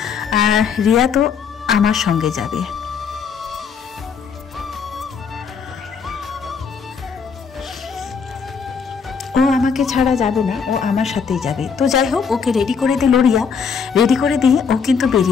আর রিয়া তো আমার সঙ্গে যাবে। ও আমাকে ছাড়া যাবে না, ও আমার সাথেই যাবে। তো যাই হোক, ওকে রেডি করে দিল রিয়া, রেডি করে দিয়ে ও কিন্তু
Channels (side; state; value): right; quieter; 6.2 dB